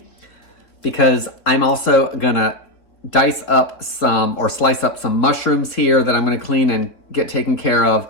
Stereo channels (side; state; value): right; late; 3.7 ms